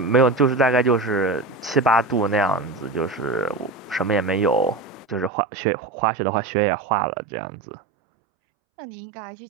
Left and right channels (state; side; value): drops out; left; at 5.3 s